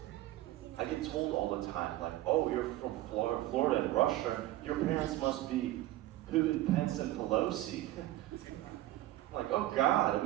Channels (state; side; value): quieter; left; 15.5 dB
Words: I get told all the time, like, oh, you're from Florida and Russia, your parents must be Putin, Pence, and Pelosi. I'm like, oh God,